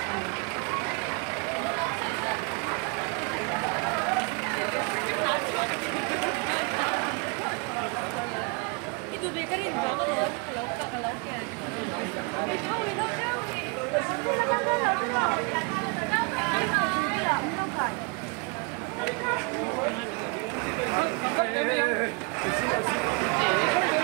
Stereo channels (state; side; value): quieter; left; 32.1 dB